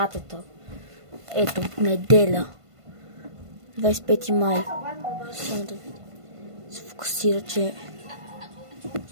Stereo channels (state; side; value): late; left; 1.5 ms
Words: Ето, неделя. 25 май. Само да се фокусира, че...